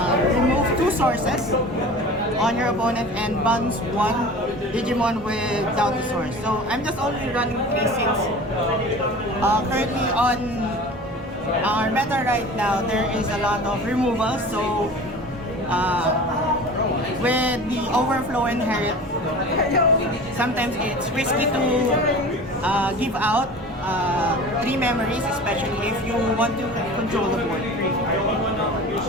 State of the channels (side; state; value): both; normal; correlation 0.38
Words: remove 2 sources on your opponent and bounce 1 Digimon without the source. So I'm just only running 3 since currently on our meta right now there is a lot of removals. So with the overflow inherit, sometimes it's risky to give out 3 memories, especially if you want to control the board.